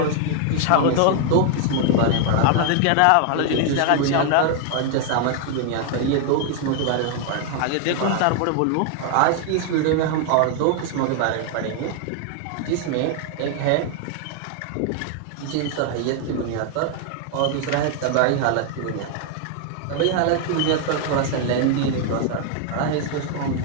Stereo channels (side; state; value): both; different; correlation 0.00